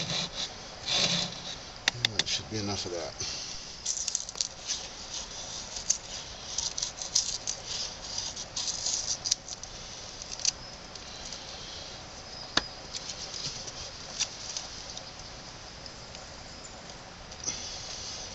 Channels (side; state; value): both; identical; correlation 1.00